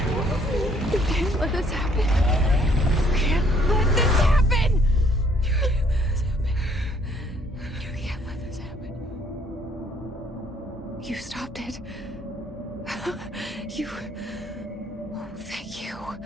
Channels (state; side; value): normal; both; correlation 0.64